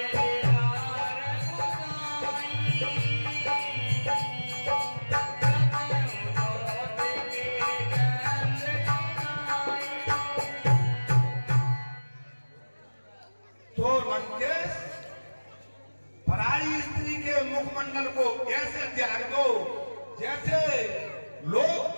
तो लंकेश, पराई स्त्री के मुखमंडल को ऐसे त्याग दो जैसे लोग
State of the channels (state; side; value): inverted; both; correlation -1.00